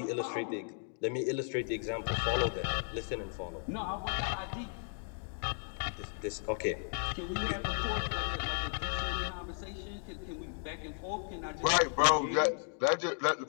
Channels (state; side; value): silent; right; 54 dB below the other